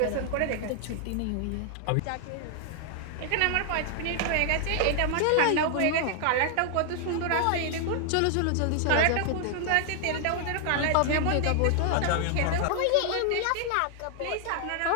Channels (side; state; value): both; different; correlation 0.00